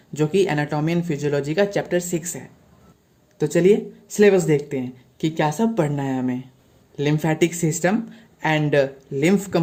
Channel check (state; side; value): identical; both; correlation 1.00